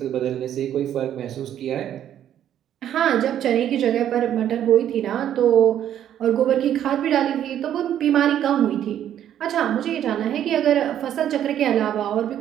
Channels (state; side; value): quieter; left; 10.6 dB